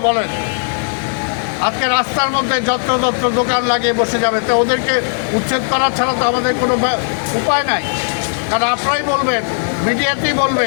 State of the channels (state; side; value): silent; right; digital silence